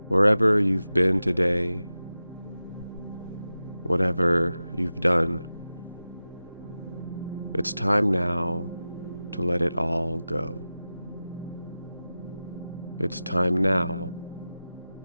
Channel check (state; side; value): inverted; both; correlation -0.94